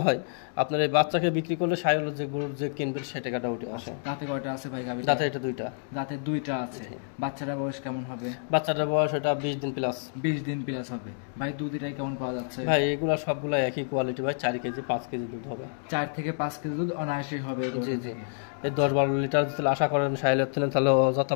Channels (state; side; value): silent; right; digital silence